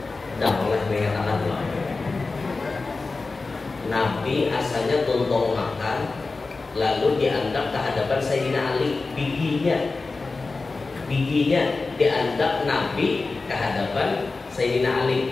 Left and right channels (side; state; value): right; quieter; 3.8 dB